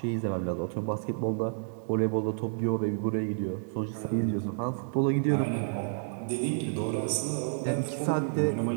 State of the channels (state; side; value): silent; left; digital silence